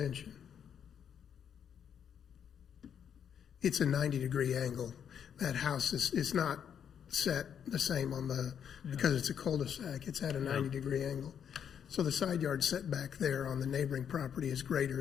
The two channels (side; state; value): right; quieter; 8.3 dB